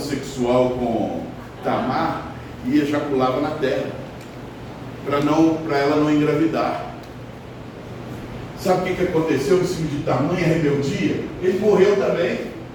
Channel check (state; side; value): identical; both; correlation 1.00